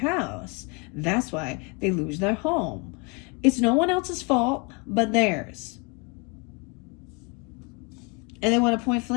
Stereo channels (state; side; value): quieter; right; 31.1 dB